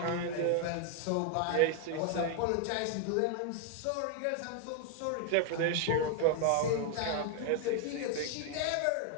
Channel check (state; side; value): different; both; correlation 0.00